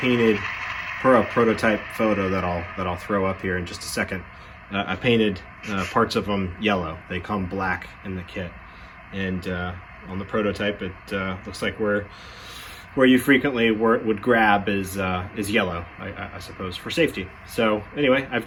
for a prototype photo that I'll throw up here in just a second. I painted parts of them yellow. They come black in the kit. And on the prototype, it looks like where you frequently would grab is yellow, I suppose, for safety. So anyway, I've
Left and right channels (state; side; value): identical; both; correlation 1.00